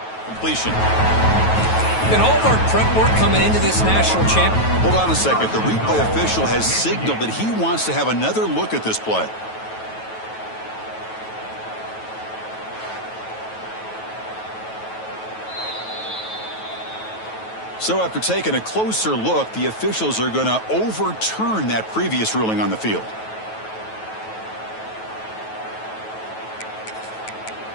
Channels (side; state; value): right; late; 9.2 ms